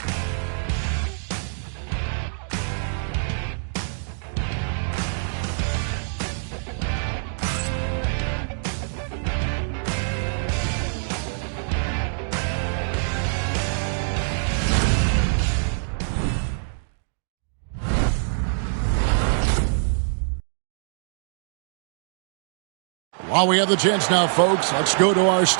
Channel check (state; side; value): silent; left; digital silence